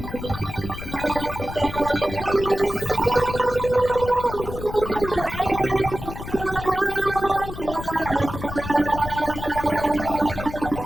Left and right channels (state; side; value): noise; left; rumble, 9 dB below the sound